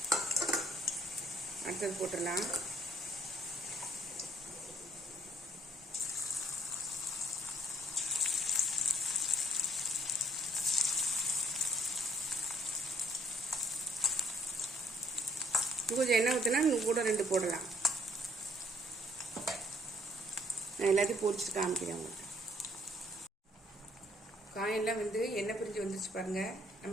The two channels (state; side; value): normal; both; correlation 0.64